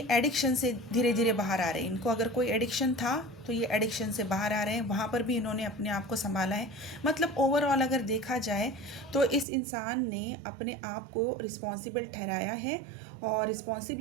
एडिक्शन से धीरे धीरे बाहर आ रहे हैं। इनको अगर कोई एडिक्शन था तो ये एडिक्शन से बाहर आ रहे हैं, वहाँ पर भी इन्होंने अपने आप को संभाला है। मतलब ओवरऑल अगर देखा जाए तो इस इंसान ने अपने आप को रिस्पॉन्सिबल ठहराया है और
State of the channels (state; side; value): drops out; left; at 9.5 s